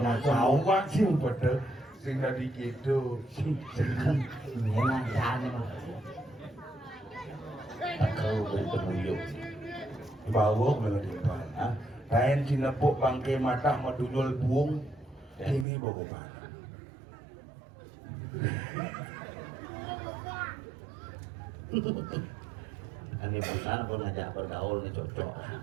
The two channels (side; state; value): left; drops out; at 15.7 s